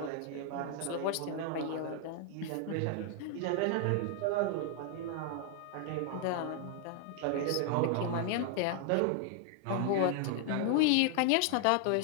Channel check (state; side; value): different; both; correlation 0.00